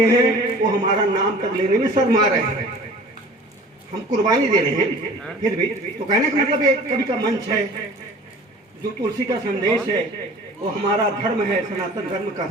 हैं वो हमारा नाम तक लेने में शर्मा रहे हैं। हम कुर्बानी दे रहे हैं फिर भी। तो कहने का मतलब एक कवि का मंच है, जो तुलसी का संदेश है वो हमारा धर्म है, सनातन धर्म का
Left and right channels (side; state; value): both; normal; correlation 0.45